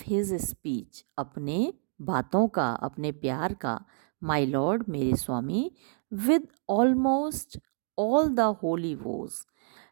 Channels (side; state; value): left; silent; digital silence